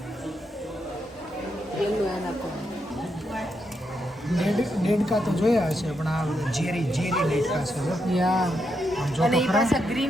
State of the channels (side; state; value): both; normal; correlation 0.82